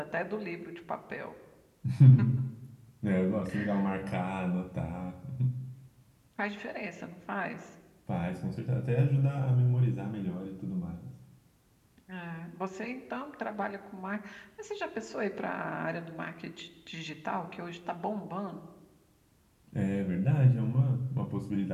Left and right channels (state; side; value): identical; both; correlation 1.00